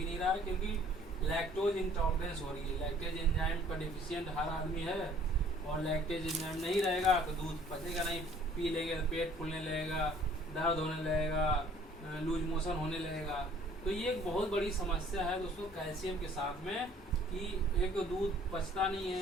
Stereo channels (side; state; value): both; normal; correlation 0.56